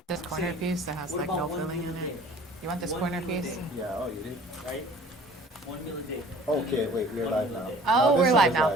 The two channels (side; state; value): both; normal; correlation 0.49